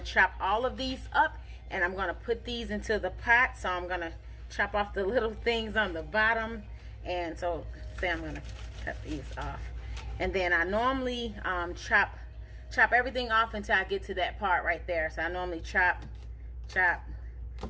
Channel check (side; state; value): both; identical; correlation 1.00